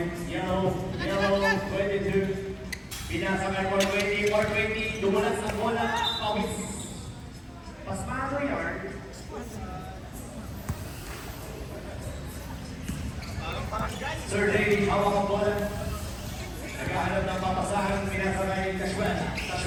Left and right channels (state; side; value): identical; both; correlation 1.00